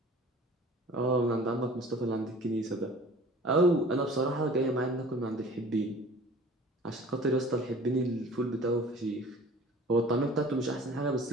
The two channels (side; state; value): both; normal; correlation 0.46